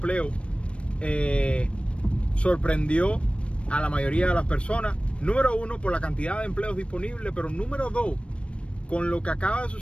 sorprendió a la mayoría de las personas. Número uno, por la cantidad de empleos disponibles, pero número dos, con lo que acaba de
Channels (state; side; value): late; right; 0.060 ms